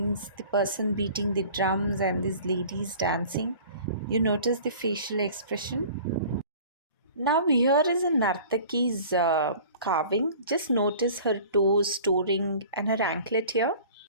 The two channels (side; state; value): both; inverted; correlation -0.45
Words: the person beating the drums and these ladies dancing. You notice the facial expression. Now, here is a Nartaki's carving. Just notice her toes, toe ring, and her anklet here.